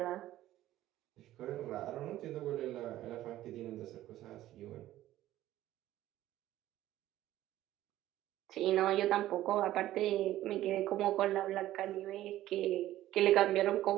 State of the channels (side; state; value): left; quieter; 14.3 dB